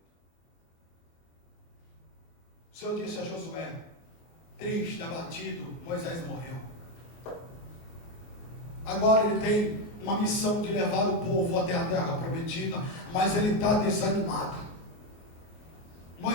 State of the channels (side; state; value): right; late; 24 ms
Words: O Senhor disse a Josué, triste, abatido: Moisés morreu. Agora ele tem uma missão de levar o povo até a terra prometida, mas ele está desanimado.